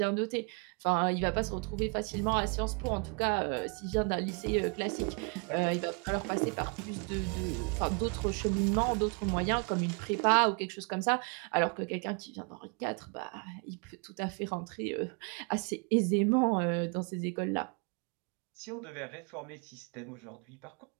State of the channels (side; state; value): left; quieter; 35.4 dB